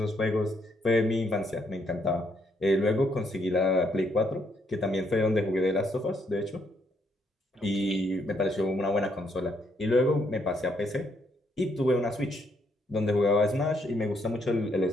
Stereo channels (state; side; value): normal; both; correlation 0.74